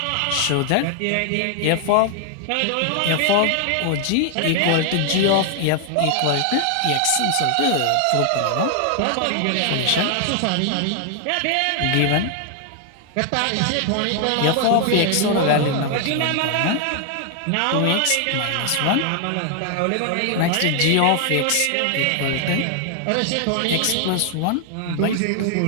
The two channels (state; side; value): different; both; correlation 0.00